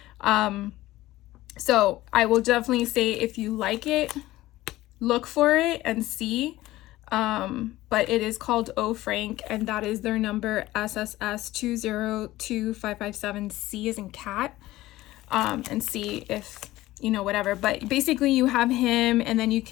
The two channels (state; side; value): quieter; right; 16.7 dB